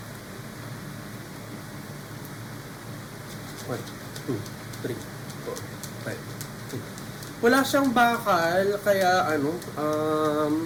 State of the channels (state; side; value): identical; both; correlation 1.00